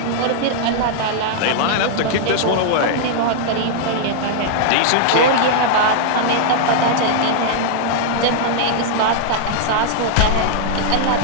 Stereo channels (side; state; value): both; different; correlation -0.01